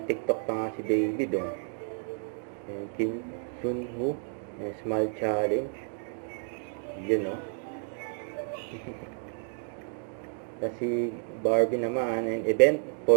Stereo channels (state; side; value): silent; left; 58 dB below the other